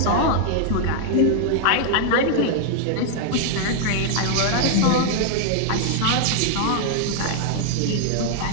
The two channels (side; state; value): both; different; correlation 0.00